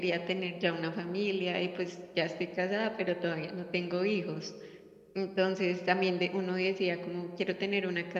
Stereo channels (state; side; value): identical; both; correlation 1.00